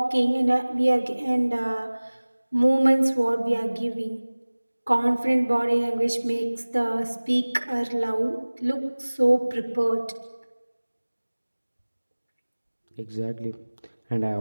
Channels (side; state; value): both; inverted; correlation -1.00